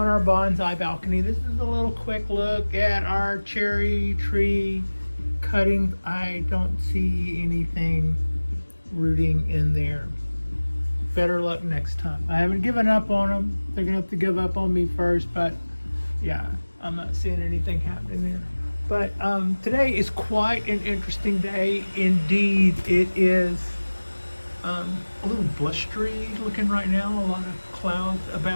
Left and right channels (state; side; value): inverted; both; correlation -1.00